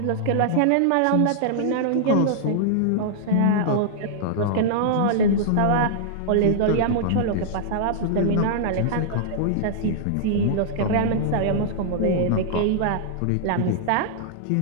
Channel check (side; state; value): both; different; correlation -0.01